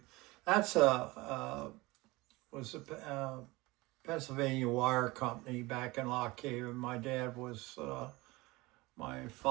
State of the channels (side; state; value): left; quieter; 22.0 dB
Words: that's was a Pennsylvania Wire Company back in Lock Haven. My dad was, my